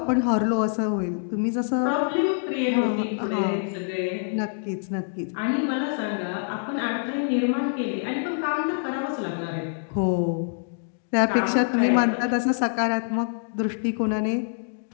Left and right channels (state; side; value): silent; right; digital silence